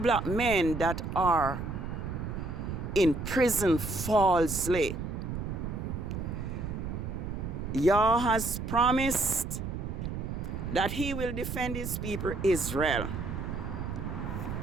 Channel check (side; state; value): right; noise; rumble, 5 dB below the sound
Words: men that are in prison falsely. Yah has promised that he will defend his people Israel.